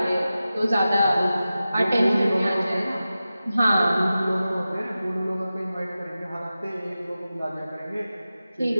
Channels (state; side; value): inverted; both; correlation -0.94